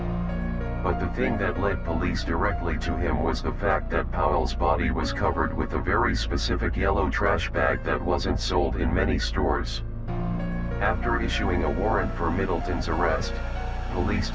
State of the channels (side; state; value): both; identical; correlation 1.00